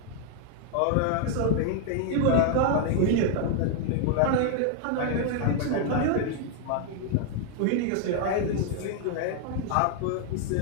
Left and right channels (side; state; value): both; different; correlation 0.00